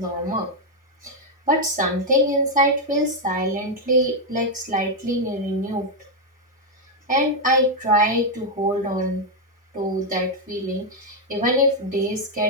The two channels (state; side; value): normal; both; correlation 0.01